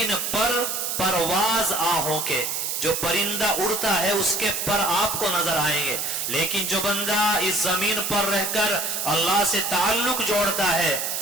پر پرواز آہوں کے. جو پرندہ اڑتا ہے اس کے پر آپ کو نظر آئیں گے، لیکن جو بندہ اس زمین پر رہ کر اللہ سے تعلق جوڑتا ہے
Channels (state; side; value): noise; right; hiss, 2 dB below the sound